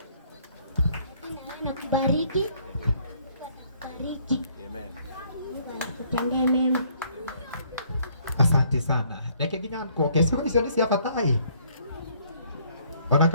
Na kubariki. Atakubariki. Amen. Mungu akutendee mema. Asante sana. Reke nginya nkoke sio icio ni cia batai. Ona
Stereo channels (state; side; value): inverted; both; correlation -0.64